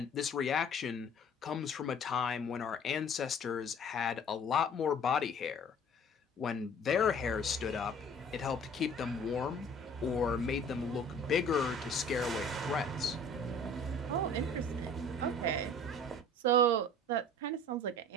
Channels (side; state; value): both; normal; correlation 0.49